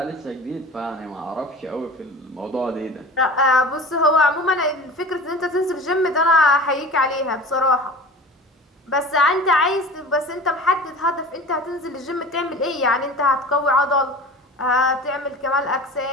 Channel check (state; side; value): normal; both; correlation 0.37